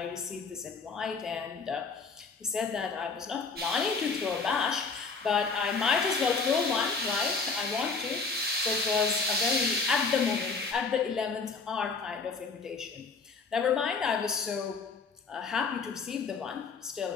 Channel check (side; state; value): right; quieter; 4.6 dB